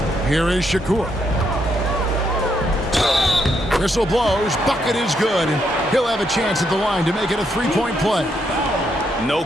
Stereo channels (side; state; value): both; normal; correlation 0.77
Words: Here is Shakur. Whistle blows. Bucket is good. And he'll have a chance at the line to make it a three-point play. No